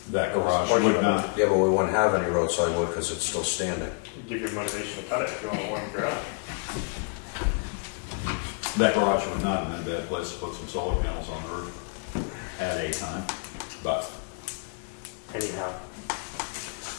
That garage Portion would of not. Yeah, but we wouldn't have any roadside wood because it's still standing. Give your motivation to cut it if you want a warm garage. That garage would not have been a bad place to put some solar panels on the roof at a time, but Anyhow,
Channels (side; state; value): right; quieter; 35.6 dB